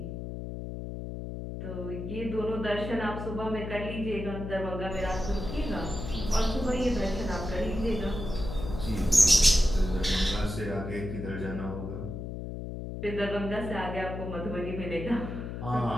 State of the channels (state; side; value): noise; left; hum, 6 dB below the sound